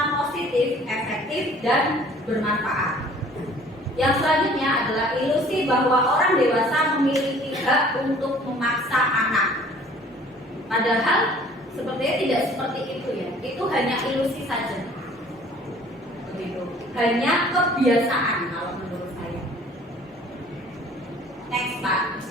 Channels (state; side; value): normal; both; correlation 0.52